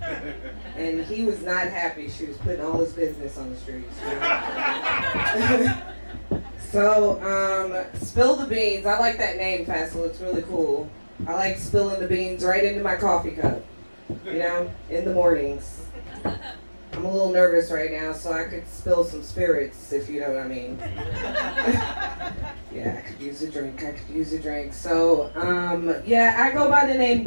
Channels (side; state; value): both; inverted; correlation -1.00